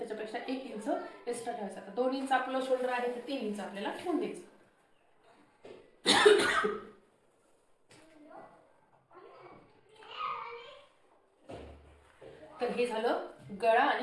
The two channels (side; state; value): both; identical; correlation 1.00